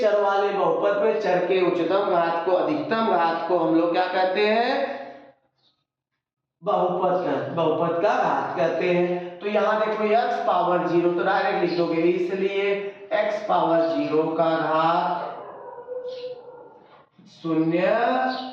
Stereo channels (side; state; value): both; identical; correlation 1.00